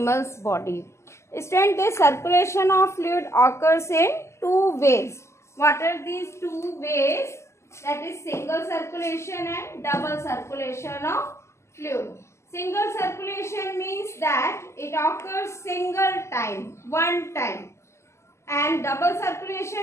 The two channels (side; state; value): right; late; 0.13 ms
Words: body. Student, this circulation of fluid occurs in two ways. What are these two ways? That is single circulation and double circulation of fluid. Single circulation means that it occurs single time, one time, and double